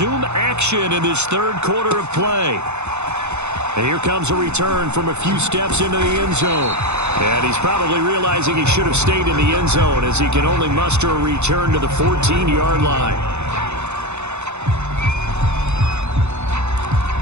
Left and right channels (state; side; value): late; left; 0.82 ms